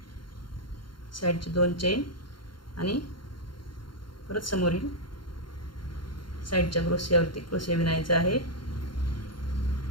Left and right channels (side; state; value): right; late; 0.72 ms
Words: साईडचे 2 चेन आणि परत समोरील साईडच्या क्रोशियावरती क्रोशिया विणायचा आहे.